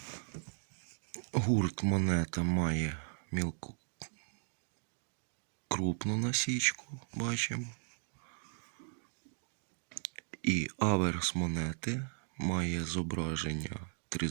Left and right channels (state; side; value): silent; left; digital silence